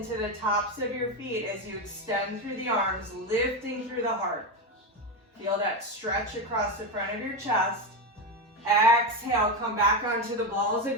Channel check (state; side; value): normal; both; correlation 0.13